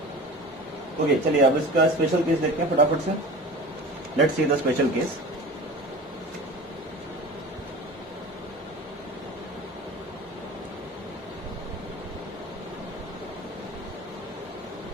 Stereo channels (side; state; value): both; normal; correlation 0.36